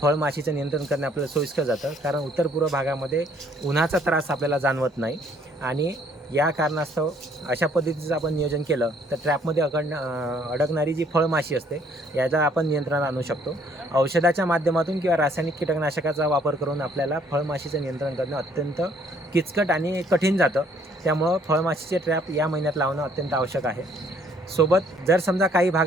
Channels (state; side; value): normal; both; correlation 0.63